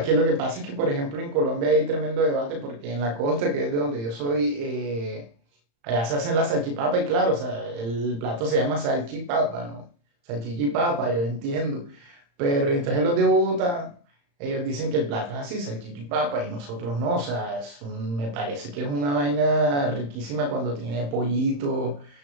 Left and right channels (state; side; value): late; left; 35 ms